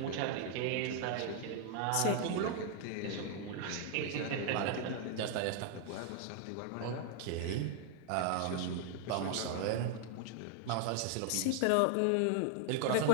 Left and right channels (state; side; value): different; both; correlation 0.00